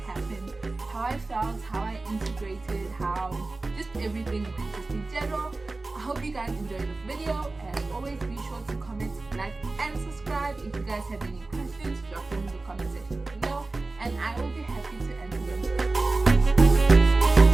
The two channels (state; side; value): quieter; left; 3.3 dB